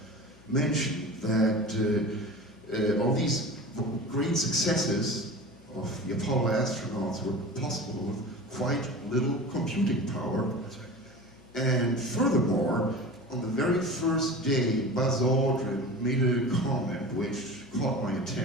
mentioned that all these great successes of the Apollo astronauts were possible with quite little computing power. That's right. And furthermore, on the very first day, Buzz Aldrin made a comment which caught my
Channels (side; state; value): left; noise; hum, 25 dB below the sound